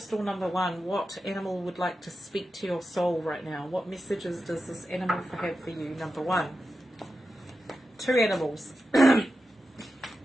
number 1, what animal would like to speak to your soul right now? What messages does this animal have for you? Number 1. 2 animals.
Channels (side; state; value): both; normal; correlation 0.91